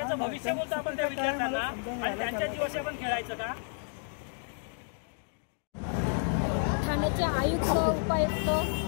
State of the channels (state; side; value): silent; right; 57 dB below the other